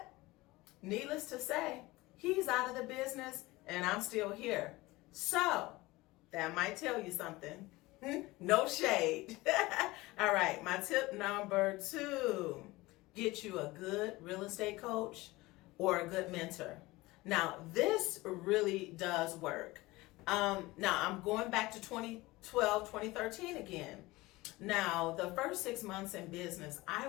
needless to say, he's out of the business and I'm still here. So that might tell you something. No shade. All right, my tip number 2, get you a good real estate coach or a good mentor. Now, this really does work. Now, I'm going back to 2012, 2013 again. Now, the first 6 months in business, I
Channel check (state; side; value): quieter; right; 20.5 dB